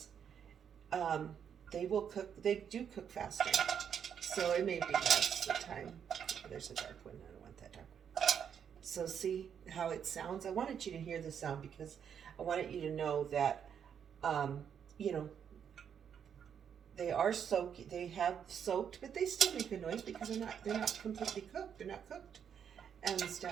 they will cook, they do cook faster. So it may be less the time. There's a dark one, I don't want that dark one. So see how it sounds? I wanted you to hear the sound because I wanted you to know that, you know, they are soaked, they have soaked, but they still make a noise because they're not completely cooked, they're not cooked and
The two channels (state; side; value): quieter; left; 8.0 dB